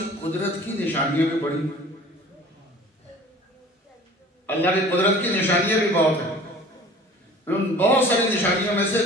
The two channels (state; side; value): normal; both; correlation 0.46